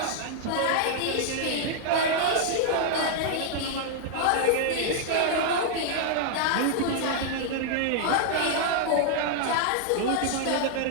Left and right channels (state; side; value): different; both; correlation -0.01